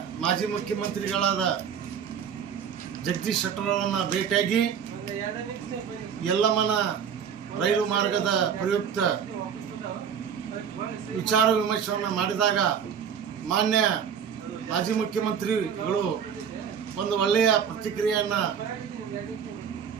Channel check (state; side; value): quieter; left; 7.7 dB